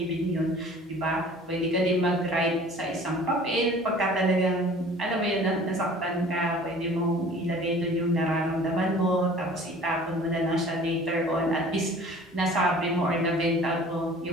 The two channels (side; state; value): both; normal; correlation 0.47